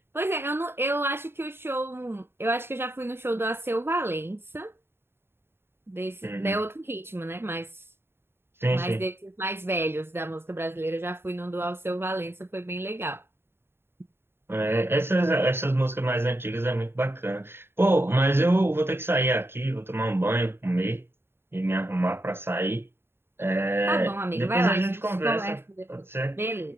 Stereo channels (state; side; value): late; left; 0.11 ms